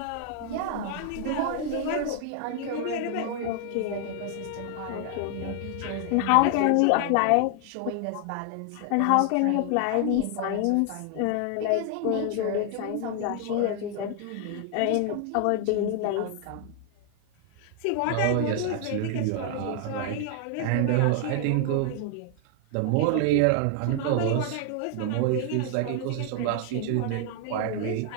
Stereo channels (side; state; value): both; different; correlation 0.00